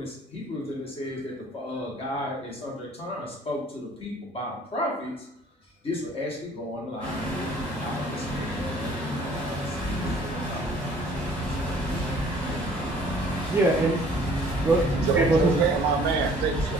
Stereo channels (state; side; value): normal; both; correlation 0.55